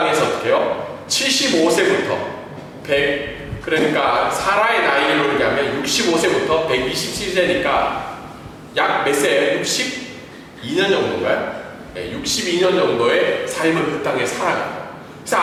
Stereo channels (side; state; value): both; identical; correlation 1.00